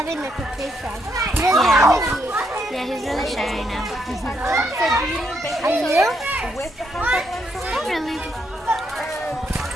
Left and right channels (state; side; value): normal; both; correlation 0.76